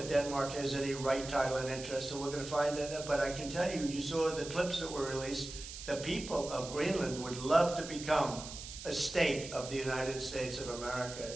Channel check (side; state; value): right; noise; hiss, 11 dB below the sound